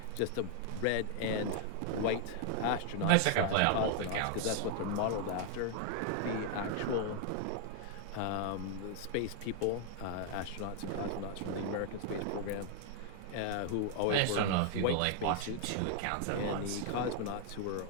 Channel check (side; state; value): both; different; correlation 0.00